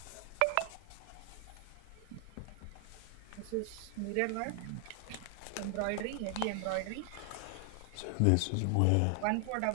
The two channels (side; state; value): both; different; correlation 0.00